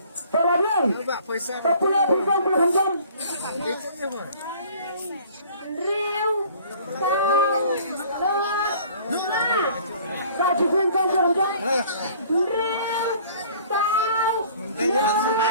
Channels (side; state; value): both; inverted; correlation -0.52